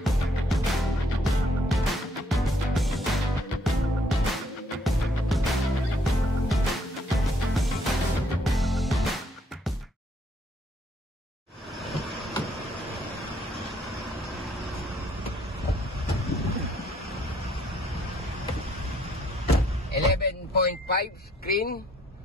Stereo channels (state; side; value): normal; both; correlation 0.67